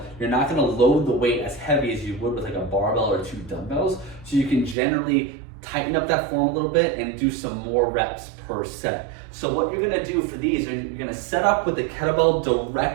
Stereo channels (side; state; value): left; drops out; at 4.8 s